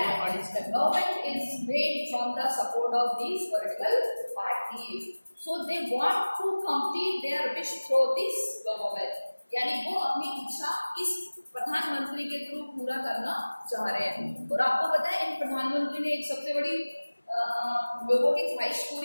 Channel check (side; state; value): both; inverted; correlation -1.00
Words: Government is made from the support of these political parties. So they want to complete their wish through this government. यानी वो अपनी इच्छा इस प्रधानमंत्री के थ्रू पूरा करना चाह रहे हैं। और आपको पता है इन प्रधानमंत्री ने एक सबसे बड़ी लोगों की ख्वाहिश